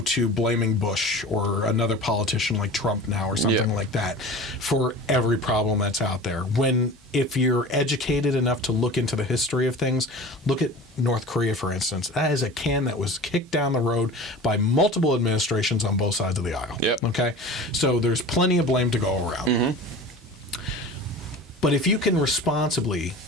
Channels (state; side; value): normal; both; correlation 0.37